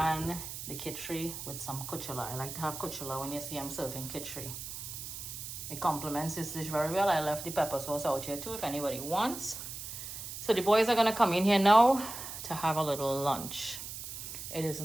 the kitchery with some kuchela. I like to have kuchela when you see I'm serving kitchery. It complements this dish very well. I left the pepper sauce out here too if anybody wants. So the boys are going to come in here now to have a little lunch. It is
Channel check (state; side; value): noise; right; hiss, 8 dB below the sound